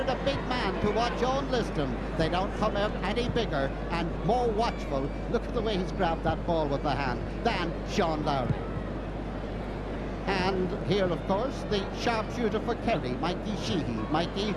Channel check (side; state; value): both; identical; correlation 1.00